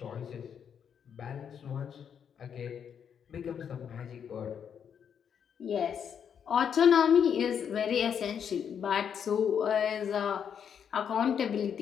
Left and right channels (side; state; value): right; quieter; 7.8 dB